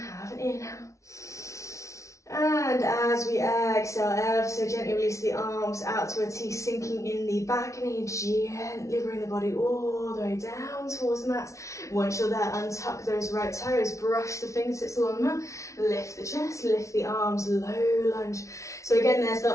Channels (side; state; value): right; late; 0.14 ms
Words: an inhale. And as we exhale, ever so gently release the arms out to a T, sinking in the back knee. Gently bring the body all the way down towards the mat. Once you're there, untuck those right toes, brush the fingertips along the mat, lift the chest, lift the arms, low lunge. So again, there's the